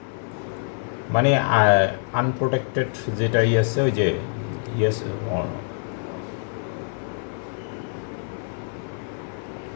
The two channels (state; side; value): silent; right; 59 dB below the other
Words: মানে আনপ্রোটেক্টেড যেটা আছে ওই যে ইয়েস।